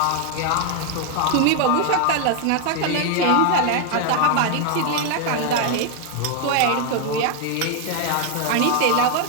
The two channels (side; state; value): both; different; correlation 0.01